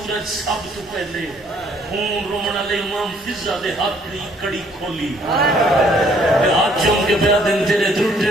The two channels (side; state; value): both; normal; correlation 0.63